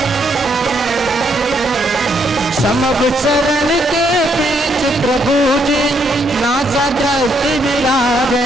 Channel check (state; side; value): normal; both; correlation 0.73